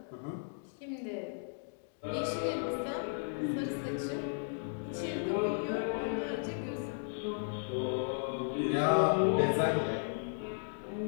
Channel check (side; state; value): right; silent; digital silence